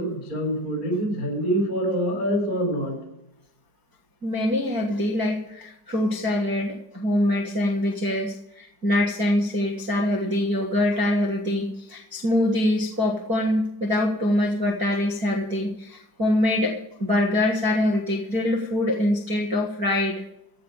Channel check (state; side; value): late; left; 4.9 ms